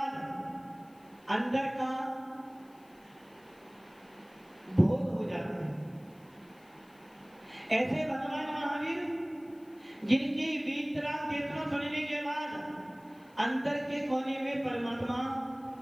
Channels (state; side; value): noise; left; hiss, 30 dB below the sound